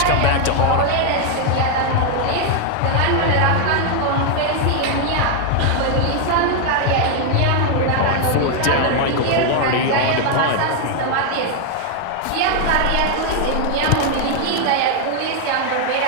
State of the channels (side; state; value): both; different; correlation 0.01